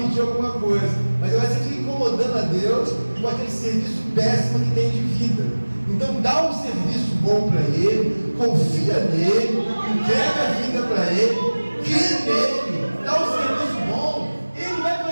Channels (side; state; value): both; inverted; correlation -1.00